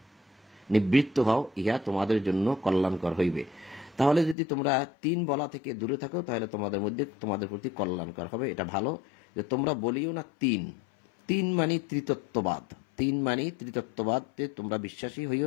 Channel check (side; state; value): right; drops out; at 4.4 s